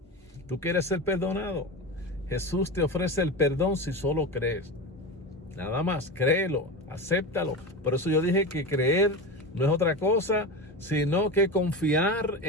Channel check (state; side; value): normal; both; correlation 0.23